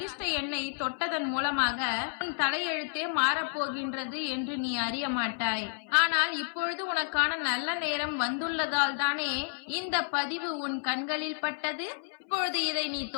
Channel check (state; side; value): silent; right; 57 dB below the other